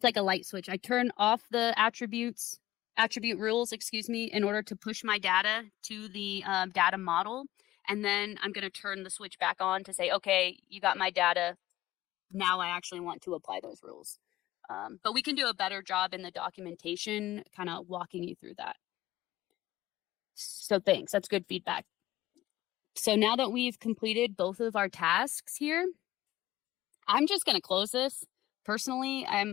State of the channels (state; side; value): quieter; right; 15.9 dB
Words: like a light switch. I turn off the attribute rules, in order to push my data to the data model. And then I'm going to turn the switch back on to say, okay, you got my data. Now I actually want to apply those rules. But we can do a better job in the documentation, kind of walking you through that. So thanks, that's good feedback. So now that we've completed both of our tasks here, I'm just going to close this. Personally,